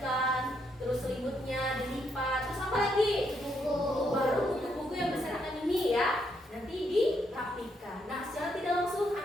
terus selimutnya dilipat, terus apa lagi? Baru buku-buku yang berserakan ini ya nanti dirapikan. Nah, secara tidak langsung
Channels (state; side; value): normal; both; correlation 0.76